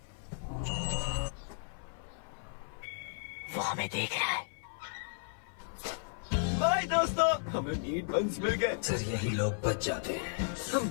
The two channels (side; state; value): right; silent; 55 dB below the other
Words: वो हमें देख रहा है। बाय दोस्तों, हमें मीट बंस मिल गए। सर यही लोग बच जाते हैं। हम